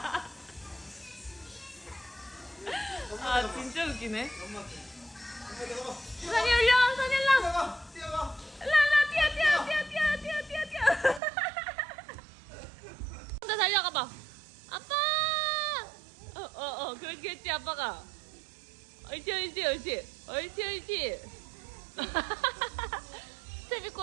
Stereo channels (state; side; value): drops out; left; at 11.2 s